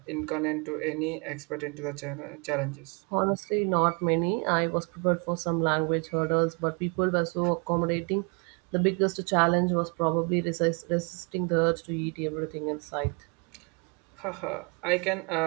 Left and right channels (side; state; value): left; quieter; 34.2 dB